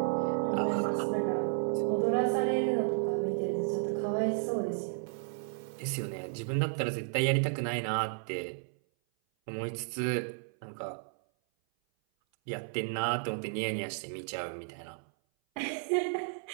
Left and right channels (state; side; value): silent; left; 56 dB below the other